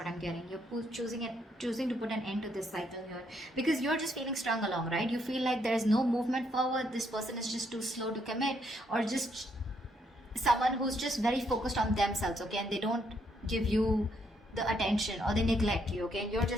I'm getting. You're choosing to put an end to this cycle here because you're just feeling strung along, right? You feel like there's no movement forward. This person is just too slow to commit, or just someone who's just very focused on themselves, okay? And they don't give you the attention, or they neglect you, okay? And you're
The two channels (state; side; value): normal; both; correlation 0.73